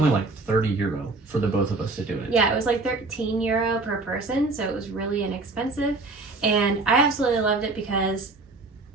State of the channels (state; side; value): quieter; left; 3.5 dB